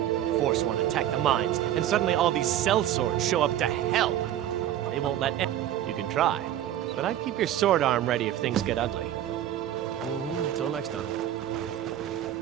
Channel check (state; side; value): quieter; left; 11.7 dB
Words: Forsworn attack the mines, and suddenly all these sellswords show up to hell. They won't let You can try, but I'd keep your sword arm ready if things get ugly. Until next time.